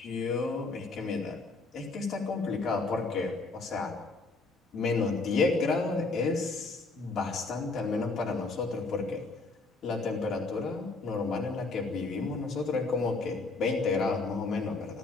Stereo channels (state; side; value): quieter; right; 3.6 dB